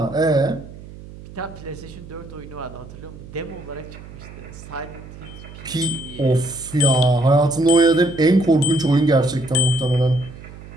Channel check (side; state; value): right; noise; hum, 16 dB below the sound